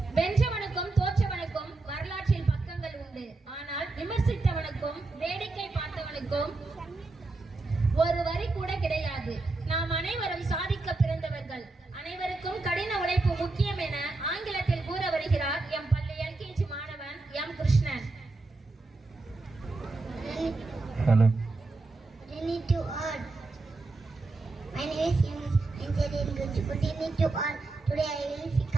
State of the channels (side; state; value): left; quieter; 3.3 dB